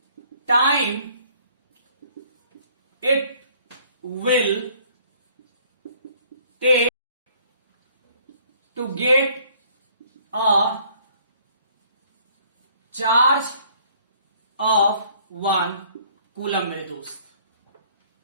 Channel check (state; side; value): inverted; both; correlation -0.59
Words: time it will take to get a charge of 1 coulomb? मेरे दोस्त,